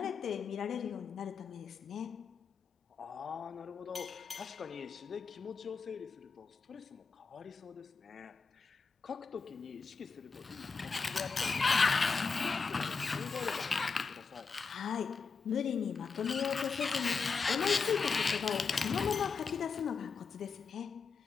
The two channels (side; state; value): right; quieter; 5.2 dB